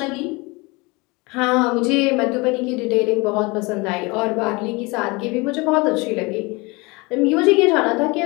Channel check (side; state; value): right; quieter; 25.8 dB